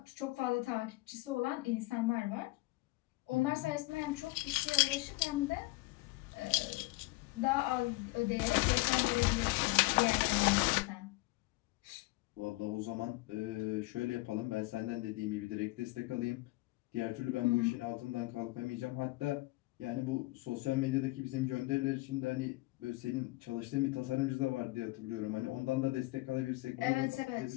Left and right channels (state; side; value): quieter; right; 21.8 dB